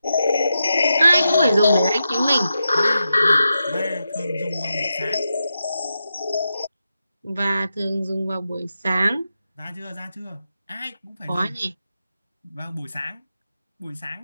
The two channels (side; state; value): both; inverted; correlation -0.88